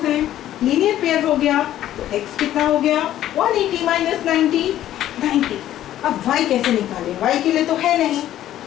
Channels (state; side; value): quieter; right; 12.6 dB